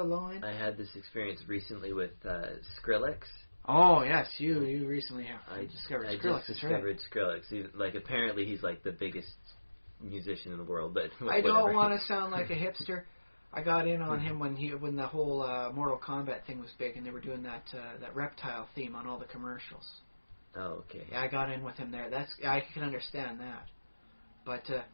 low end. I had this experience recently with Skrillex. Oh, yes, you recently have discovered Skrillex. I just discovered Skrillex. Like, apparently he's, like, the biggest musician in the world, but whatever. I don't want to sound like a hipster. I got in on him when the whole Mortal Kombat thing was big, and they were doing that reptile theme on all the commercials. Oh, okay. Yeah, I got in with him there. I can understand that,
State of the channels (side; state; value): both; inverted; correlation -1.00